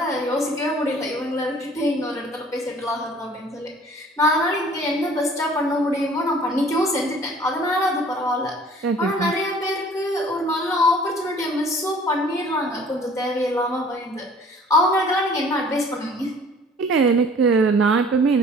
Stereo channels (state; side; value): normal; both; correlation 0.52